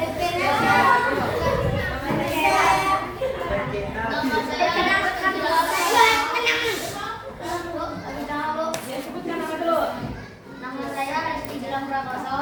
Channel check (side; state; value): both; identical; correlation 1.00